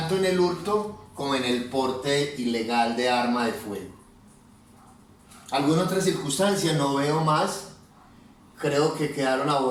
en el hurto como en el porte ilegal de arma de fuego. ¿Alguna otra circunstancia? No veo más. Creo que quedaron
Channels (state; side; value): identical; both; correlation 1.00